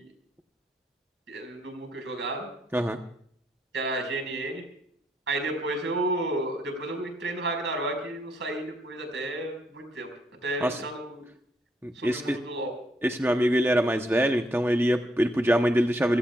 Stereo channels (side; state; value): both; normal; correlation 0.73